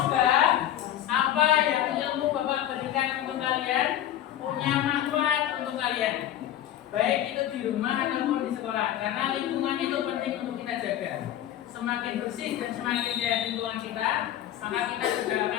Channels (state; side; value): quieter; right; 11.8 dB